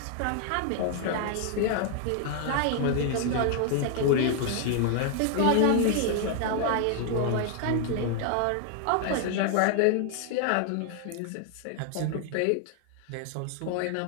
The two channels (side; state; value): both; different; correlation 0.00